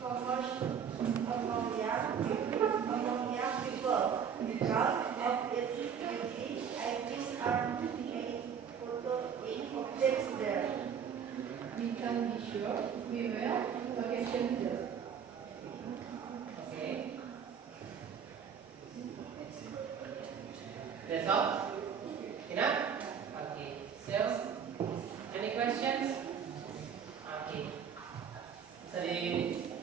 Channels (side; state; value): left; quieter; 7.4 dB